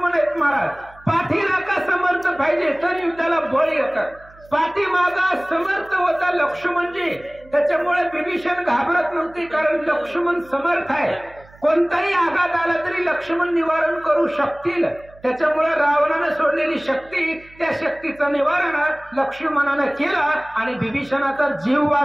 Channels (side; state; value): right; noise; hum, 25 dB below the sound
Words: आहेत महाराज. पाठीराखा समर्थ पाहिजे तर युद्धाला बळ येतात. पाठीमागा समर्थ होता लक्ष्मणजी, त्याच्यामुळे विभीषण घाबरत नव्हती. कारण लक्ष्मण समर्थ आहे. कोणताही आघात आला तरी लक्ष्मण निवारण करू शकतील. त्याच्यामुळे रावणानं सोडलेली शक्ती, त्या शक्तीचं निवारण लक्ष्मणानं केलं आणि विभीषणाचा जीव